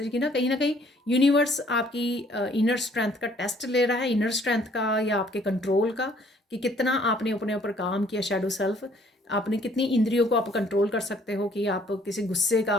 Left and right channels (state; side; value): normal; both; correlation 0.61